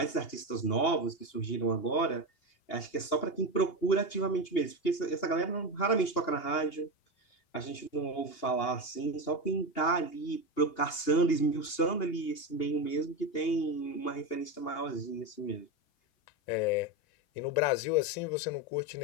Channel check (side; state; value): right; late; 2.8 ms